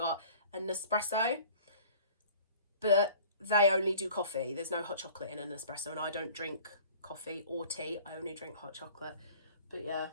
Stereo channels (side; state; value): both; inverted; correlation -0.47